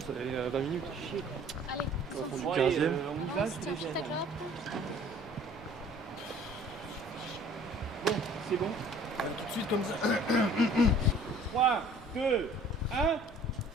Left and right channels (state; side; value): normal; both; correlation 0.52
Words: fait 20 minutes. Allez, Au fond du Ouais, 15e. on y va, je te les tiens, gêne. peut-être là. Bon, c'est bon. Tout de suite comme ça. 3, 2, 1,